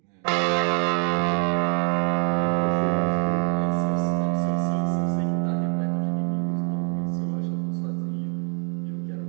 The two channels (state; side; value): quieter; left; 38.3 dB